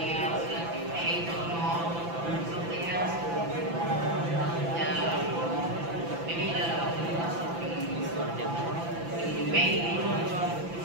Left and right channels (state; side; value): late; left; 5.9 ms